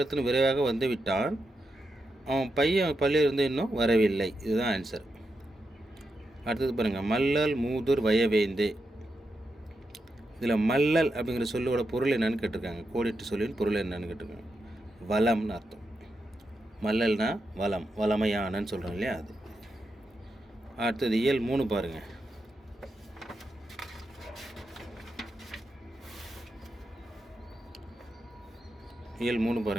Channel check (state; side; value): normal; both; correlation 0.86